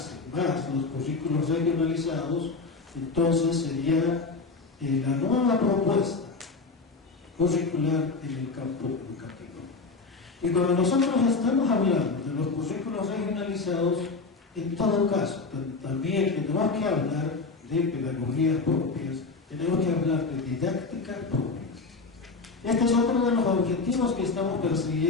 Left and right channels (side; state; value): right; quieter; 4.1 dB